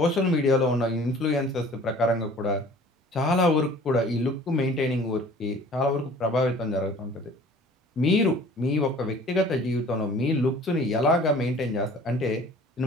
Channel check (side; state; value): both; normal; correlation 0.48